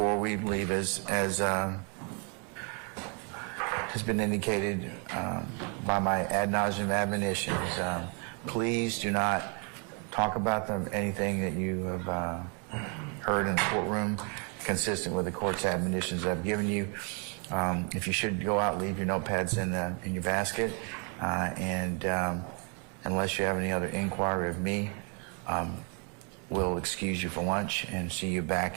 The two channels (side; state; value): left; quieter; 37.1 dB